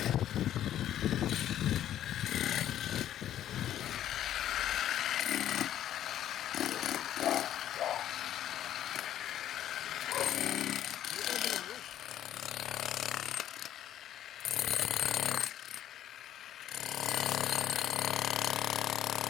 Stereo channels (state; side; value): quieter; right; 11.6 dB